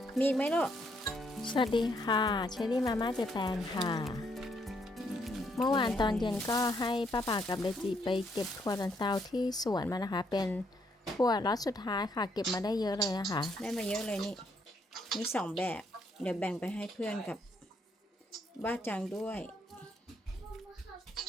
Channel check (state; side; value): normal; both; correlation 0.73